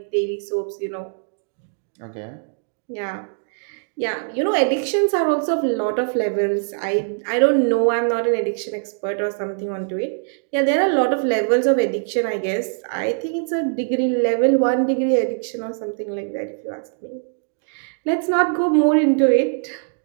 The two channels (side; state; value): left; silent; digital silence